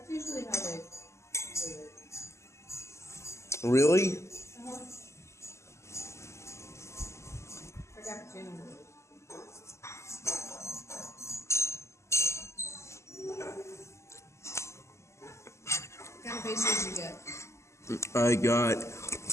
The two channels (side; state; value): right; late; 0.13 ms